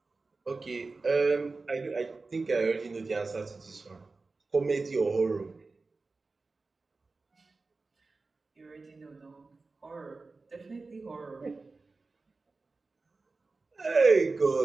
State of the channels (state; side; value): quieter; left; 3.8 dB